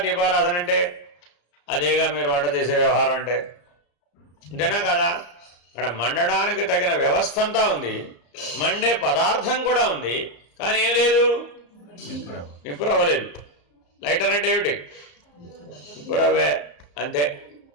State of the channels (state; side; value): late; right; 34 ms